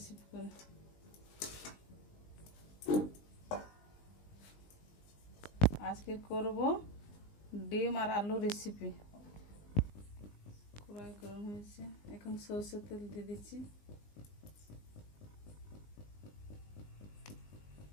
করে আজকে করব ডিম আর আলু রেসিপি। কড়াই গরম হয়েছে, এখন সরষের তেল দিয়ে দিচ্ছি।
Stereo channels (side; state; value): right; late; 20 ms